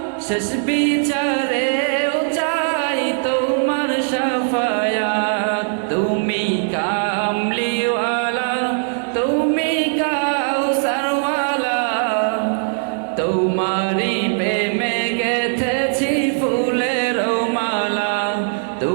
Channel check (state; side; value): silent; left; digital silence